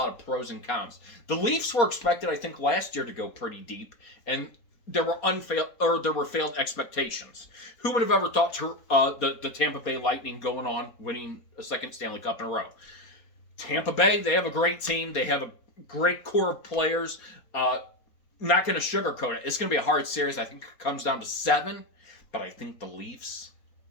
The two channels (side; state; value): right; late; 4.2 ms